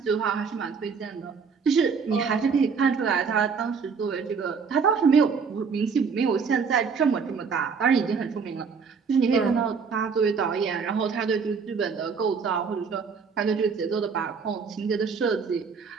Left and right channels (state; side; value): quieter; left; 5.6 dB